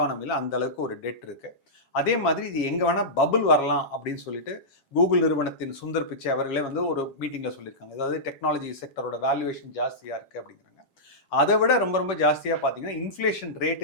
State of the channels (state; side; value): late; right; 7.3 ms